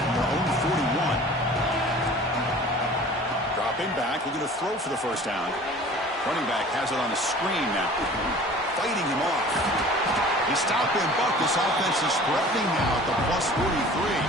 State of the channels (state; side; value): normal; both; correlation 0.45